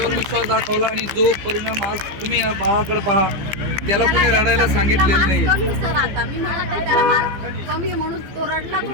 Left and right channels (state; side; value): late; left; 15 ms